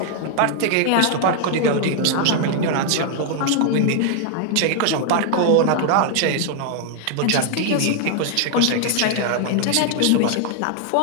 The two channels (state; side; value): different; both; correlation 0.00